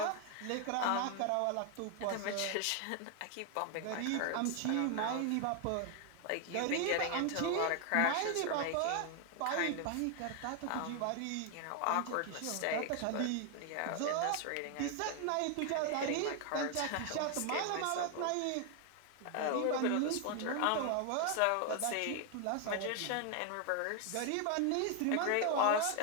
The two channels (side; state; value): both; different; correlation 0.00